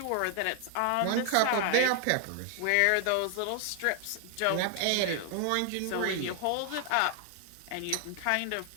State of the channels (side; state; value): both; different; correlation 0.00